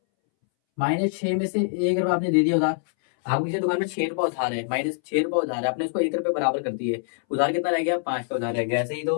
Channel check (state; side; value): silent; right; 62 dB below the other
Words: -6 में से 1 रुपया आपने दे दिया उधार, आपको किसी दुकान में 6 रुपया उधार है, -6 रुपया उधार है, आपने उसको 1 रुपये बराबर कर दिए, उधार कितना रह गया, 5 का उधार रह गया, ऐसे ही